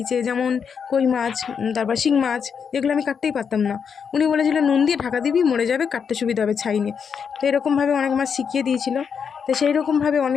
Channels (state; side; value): quieter; right; 6.7 dB